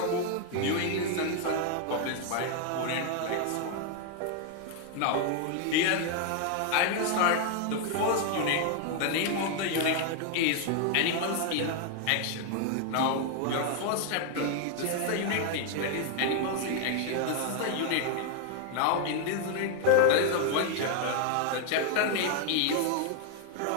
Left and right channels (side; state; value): both; different; correlation 0.00